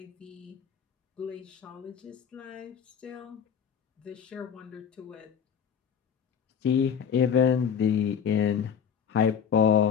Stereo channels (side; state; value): right; quieter; 7.5 dB